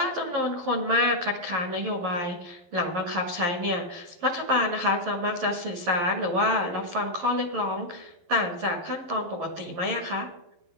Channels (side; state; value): left; late; 12 ms